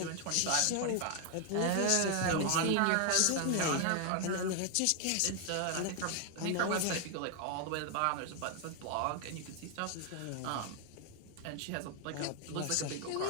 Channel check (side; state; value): both; different; correlation 0.00